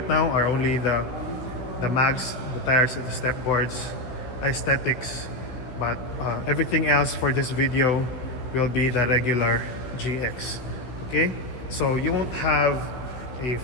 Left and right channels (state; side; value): late; right; 16 ms